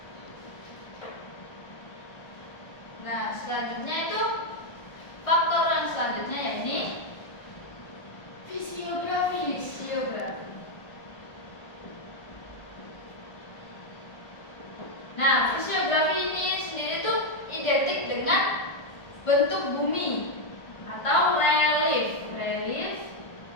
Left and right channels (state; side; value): late; right; 1.4 ms